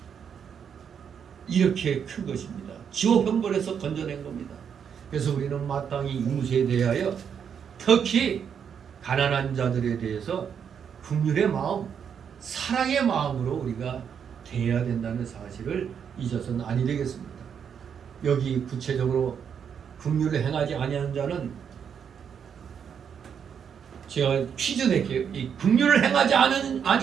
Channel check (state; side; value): quieter; left; 7.6 dB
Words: 이렇게 큰 것입니다. 지옥 형벌에서 건져낸 겁니다. 그래서 우리는 마땅히 이웃에 대하여 특히 가난한 자들에 대해서 긍휼의 마음, 사랑의 마음으로 우리가 대해야 된다는 사실을 잊어서는 아니 되겠습니다. 여기 구체적으로 긍휼을 행하지 아니하는 자는 제가 퀴즈 낼게요. 이 긍휼을 행하지